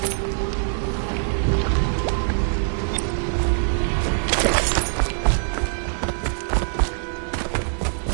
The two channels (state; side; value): silent; left; digital silence